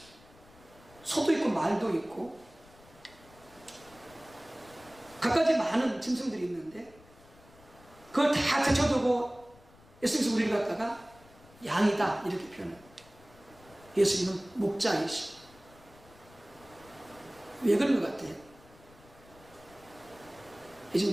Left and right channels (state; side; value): noise; left; rumble, 25 dB below the sound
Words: 소도 있고, 말도 있고, 갖가지 많은 짐승들이 있는데 그걸 다 제쳐두고 예수님께서 우리를 갖다가 양이다 이렇게 표현해요. 예수님은 목자이시고. 왜 그런 것 같아요?